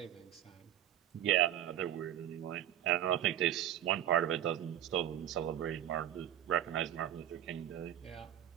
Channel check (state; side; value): quieter; left; 11.6 dB